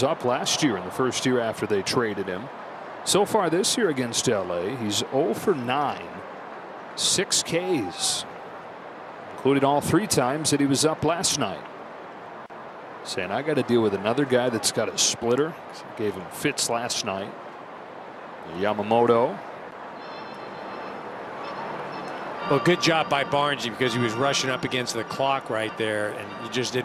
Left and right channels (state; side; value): identical; both; correlation 1.00